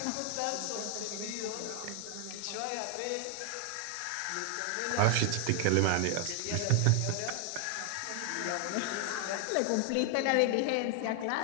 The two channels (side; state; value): both; different; correlation 0.00